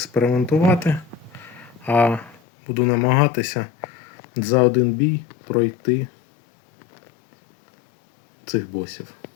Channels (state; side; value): drops out; right; at 2.4 s